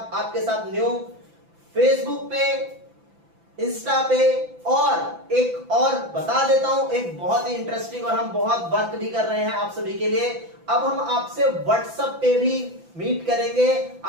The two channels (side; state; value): left; late; 5.9 ms